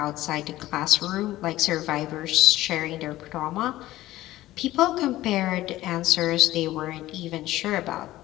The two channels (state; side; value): quieter; right; 15.9 dB